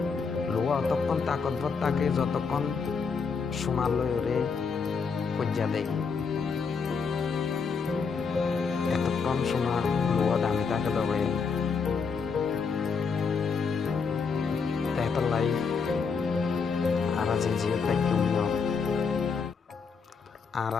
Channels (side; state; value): right; quieter; 5.4 dB